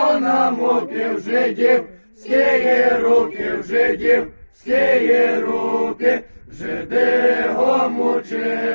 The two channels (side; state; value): both; inverted; correlation -1.00